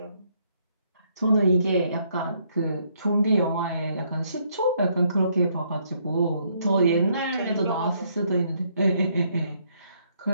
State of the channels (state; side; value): inverted; both; correlation -0.71